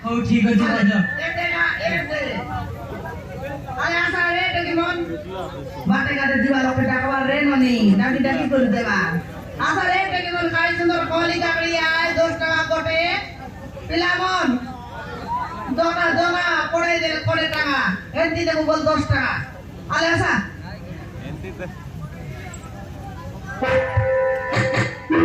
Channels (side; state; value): both; identical; correlation 1.00